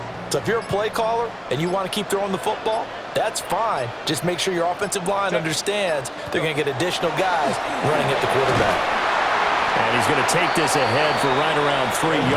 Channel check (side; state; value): both; identical; correlation 1.00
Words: So if you're a play caller and you want to keep throwing the football, that's fine. Just make sure your offensive line understands they're going to get additional guys running at the quarterback. And he's going to take this ahead for right around 3